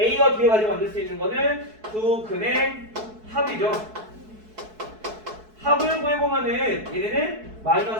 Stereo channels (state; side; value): late; left; 4.6 ms